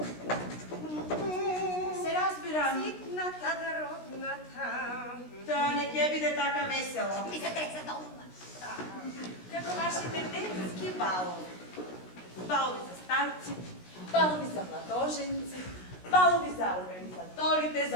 Се разбирам. Ситната родната. Тоа не ќе биде така весело. Ми се треса долна. Како вашите детски балови. балови за старци, балови за младоженци, балови за организаторите,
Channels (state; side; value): late; right; 16 ms